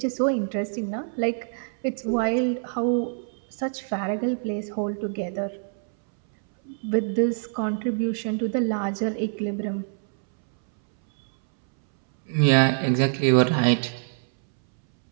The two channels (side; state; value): left; silent; 62 dB below the other